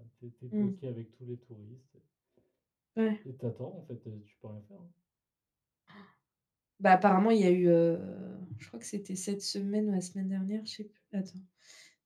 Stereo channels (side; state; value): both; identical; correlation 1.00